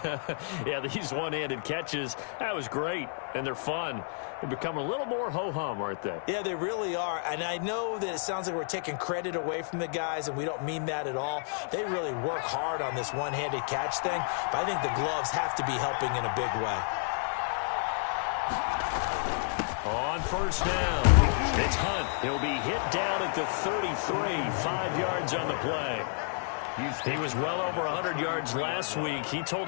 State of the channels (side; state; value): right; silent; 57 dB below the other